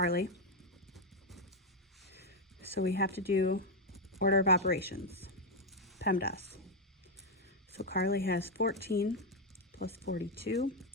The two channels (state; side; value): normal; both; correlation 0.03